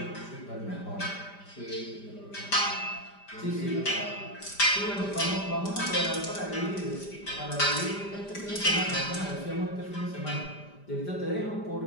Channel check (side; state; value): right; late; 5.0 ms